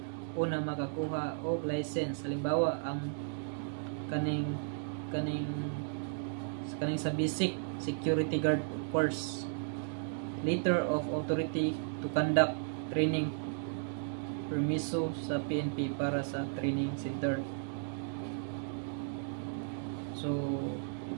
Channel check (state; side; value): silent; left; digital silence